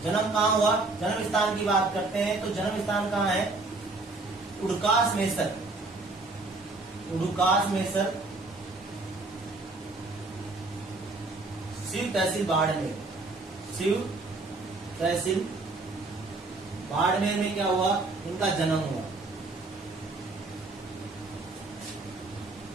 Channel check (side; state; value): left; quieter; 3.3 dB